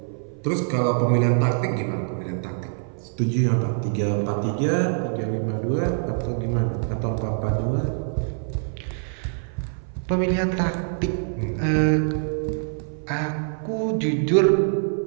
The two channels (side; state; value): left; silent; 57 dB below the other